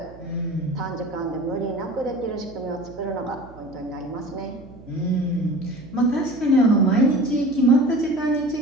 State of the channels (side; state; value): right; noise; hum, 20 dB below the sound